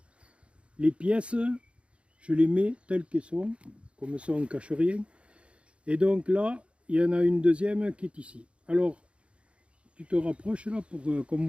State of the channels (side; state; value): left; late; 0.059 ms